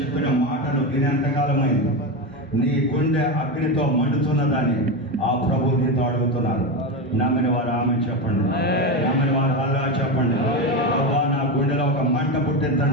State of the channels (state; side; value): normal; both; correlation 0.16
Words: మాటలు వినేంతకాలమైంది. నీ గుండె అగ్నితో మండుతున్నదని ఆ ప్రభు నీతో అడుగుతున్నారు. నమ్మిన వారు ఆమె చెప్పండి, నమ్మిన వారు అల్లా చెప్పండి. ప్రభా, నా గుండెలో ఒక మంట